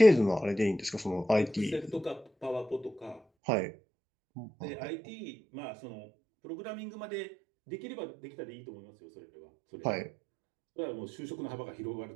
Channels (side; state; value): left; drops out; at 3.2 s